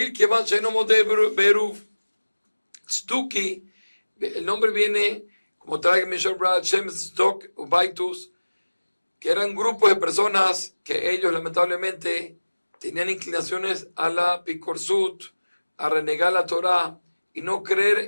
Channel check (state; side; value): inverted; both; correlation -1.00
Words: que van sheno mode Beruv. Stuki, el nombre viene, como trae Mishal Brad, Shem Sdok, Ubaitus, que eran grupos de personas que ellos lamentablemente tenían inclinaciones a la picorsut, a renegar la Torah y no